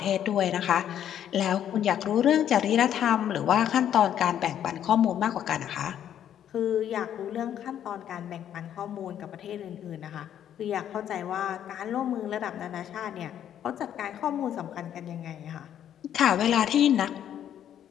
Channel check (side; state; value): right; quieter; 10.2 dB